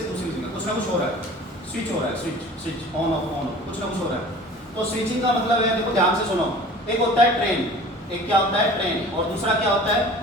दूसरी जगह, कुछ ना कुछ हो रहा है, स्विच हो रहा है, स्विच ऑन ऑफ कुछ ना कुछ हो रहा है। तो स्विचिंग का मतलब है, देखो ध्यान से सुनो, एक होता है ट्रेन, एक क्या होता है ट्रेन, और दूसरा क्या होता है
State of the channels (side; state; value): both; normal; correlation 0.44